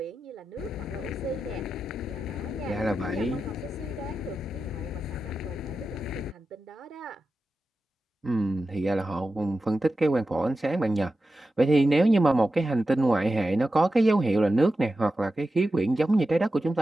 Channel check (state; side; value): normal; both; correlation 0.92